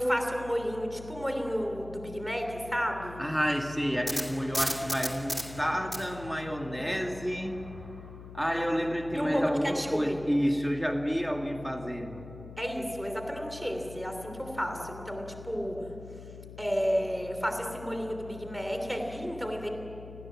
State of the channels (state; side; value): noise; left; hum, 14 dB below the sound